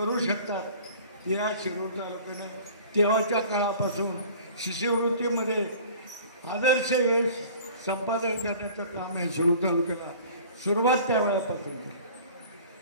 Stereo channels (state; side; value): inverted; both; correlation -0.47